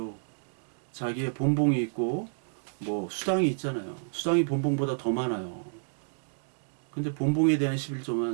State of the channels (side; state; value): left; silent; digital silence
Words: 자기의 본봉이 있고 뭐 수당이 있잖아요. 수당이 본봉보다 더 많아요. 근데 본봉에 대한